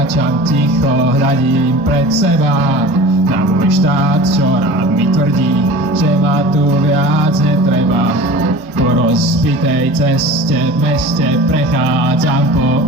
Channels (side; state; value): both; normal; correlation 0.38